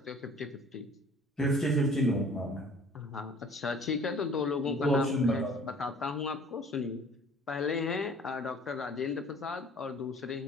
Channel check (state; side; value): normal; both; correlation 0.51